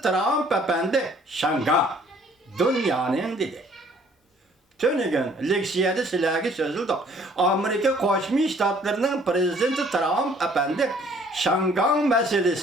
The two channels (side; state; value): both; normal; correlation 0.59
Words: Trump efendi şanga dünyanın dedi. Tönügün leksiyede silahı sözüldü. Amerika Koşmuş Ştatlarının prezidenti Trump efendi şangan